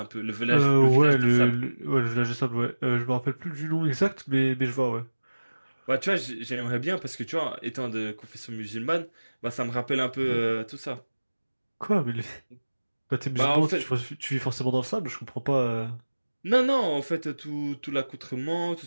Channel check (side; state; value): both; inverted; correlation -1.00